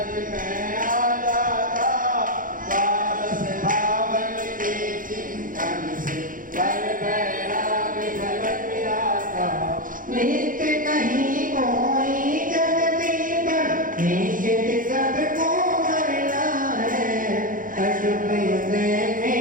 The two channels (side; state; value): left; late; 0.40 ms